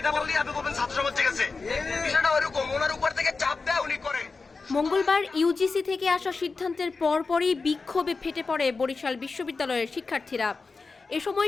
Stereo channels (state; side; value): quieter; right; 4.2 dB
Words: বললেই আপনি বলবেন ছাত্র সমাজ গেছে। বিষয়টা ওরকম, ওনার উপর থেকে চাপ দেয় উনি করে। মঙ্গলবার ইউজিসি থেকে আসা সিদ্ধান্তের পরপরই বিক্ষোভে ফেটে পড়ে বরিশাল বিশ্ববিদ্যালয়ের শিক্ষার্থীরা। এ